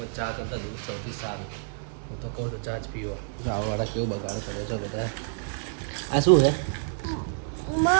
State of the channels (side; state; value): left; silent; digital silence